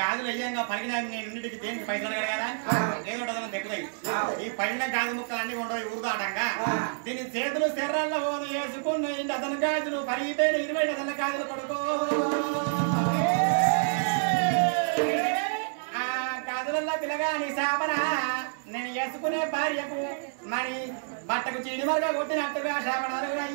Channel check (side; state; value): left; silent; 59 dB below the other